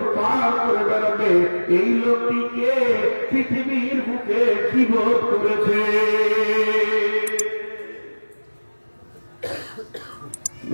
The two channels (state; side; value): inverted; both; correlation -1.00